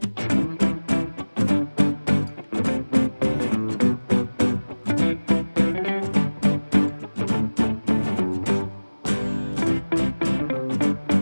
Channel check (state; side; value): inverted; both; correlation -1.00